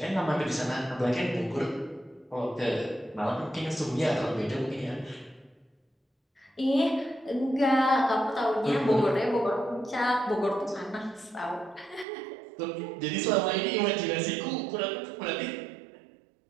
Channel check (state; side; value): drops out; left; at 12.1 s